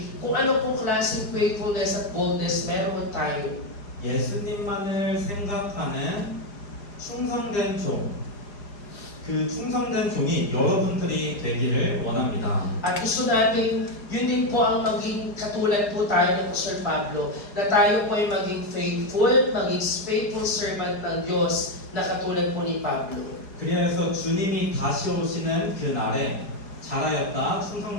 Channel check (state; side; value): late; right; 4.9 ms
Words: kung ano pong klaseng faithfulness at boldness meron tayo. 예수님만을 생각하는 충성된 종, 그 충성된 종이 여러분들이 되기를 원합니다. At gusto natin, yun din po ang maging katulad po tayo ng Apostol Pablo, na tayo po ay maging faithful servant ng Diyos na katulad po ni Pablo. 그래서 주님이 다시 오시는 그 날에 잘하였다